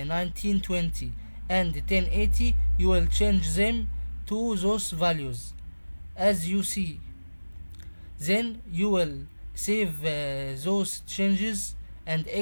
and 1080. You will change them to those values as you see. Then you will save those changes and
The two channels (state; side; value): inverted; both; correlation -1.00